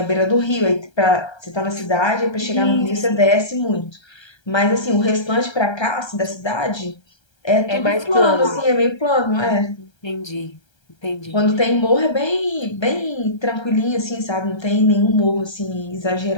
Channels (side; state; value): right; late; 1.3 ms